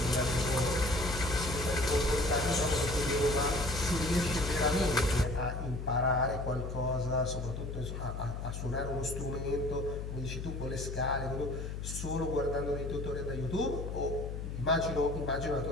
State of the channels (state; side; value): noise; left; hum, 6 dB below the sound